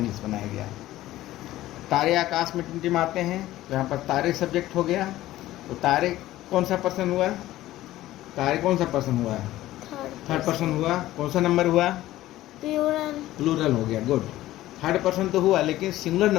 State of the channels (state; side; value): quieter; right; 15.3 dB